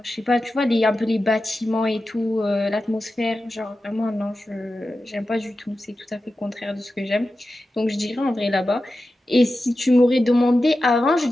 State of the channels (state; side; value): normal; both; correlation 0.93